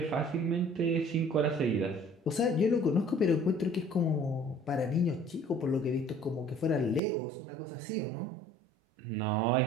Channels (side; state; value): left; drops out; at 7.0 s